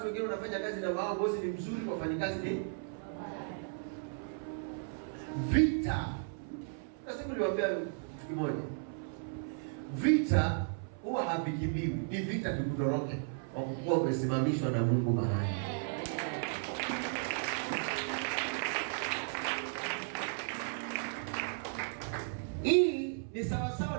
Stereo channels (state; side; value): silent; left; 54 dB below the other